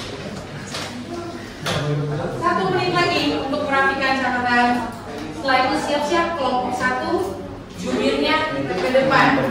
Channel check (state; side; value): identical; both; correlation 1.00